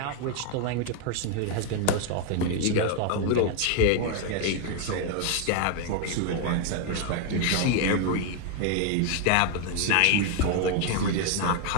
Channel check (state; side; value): different; both; correlation 0.01